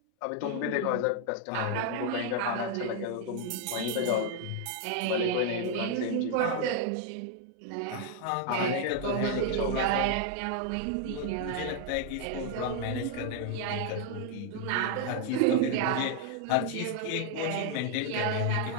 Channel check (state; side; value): different; both; correlation 0.00